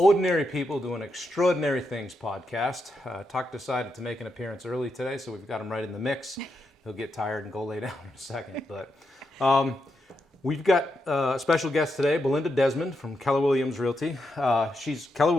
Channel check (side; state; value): both; normal; correlation 0.83